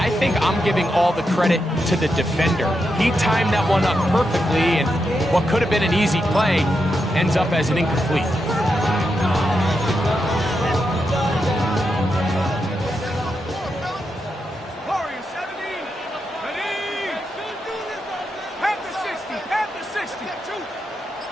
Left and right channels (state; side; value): normal; both; correlation 0.85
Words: think I'm giving all the credit to the defender. He timed that one up perfectly, and what could have been an easy play ends up as an incomplete.